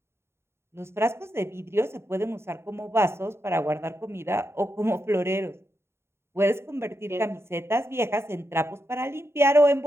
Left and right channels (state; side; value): late; left; 0.12 ms